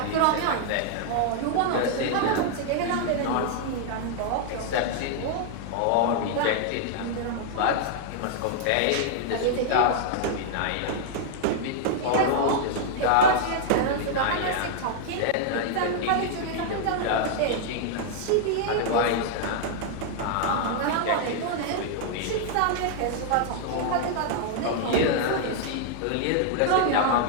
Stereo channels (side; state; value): both; different; correlation -0.01